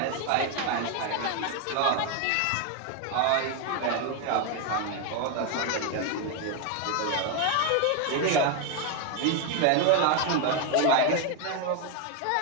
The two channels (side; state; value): both; different; correlation 0.01